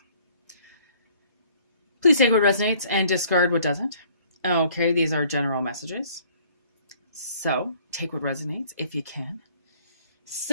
Please take what resonates and discard what doesn't. Okay, these are general messages. So, take what resonates if you can.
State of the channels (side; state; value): both; inverted; correlation -0.58